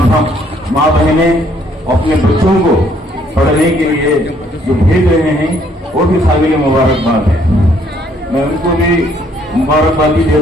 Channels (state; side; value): normal; both; correlation 0.66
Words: بہنیں اپنے بچوں کو پڑھنے کے لیے جو بھیج رہے ہیں وہ بھی قابل مبارکباد ہے۔ میں ان کو بھی مبارکبادی